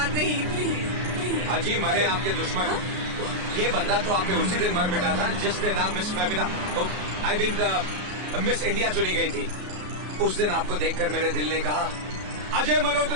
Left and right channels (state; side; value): late; left; 33 ms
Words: नहीं। प्लीज अजी मरे आपके दुश्मन। ये बंदा तो आपने उसी दिन मर मिटा था जिस दिन आप miss Femina, I mean miss India चुनी गई थी। उस दिन आपको देखकर मेरे दिल ने कहा, अजय